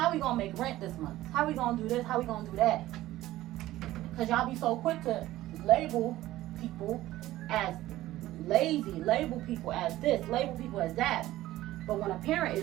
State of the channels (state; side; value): quieter; left; 15.7 dB